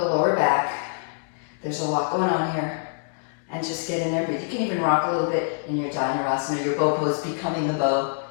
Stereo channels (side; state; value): right; silent; digital silence